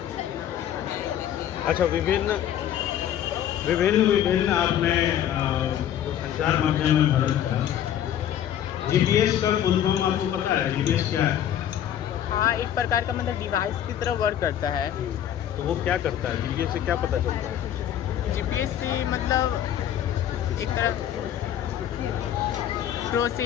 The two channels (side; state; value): right; quieter; 10.6 dB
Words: अच्छा, विभिन्न आपने जो संचार माध्यम है भारत का, जीपीएस का फुल फॉर्म आपको पता है? जीपीएस क्या है? हाँ, एक प्रकार का मतलब डिवाइस की तरह वर्क करता है। तो वो क्या करता है? जीपीएस से क्या पता चलता है? जीपीएस से मतलब एक तरह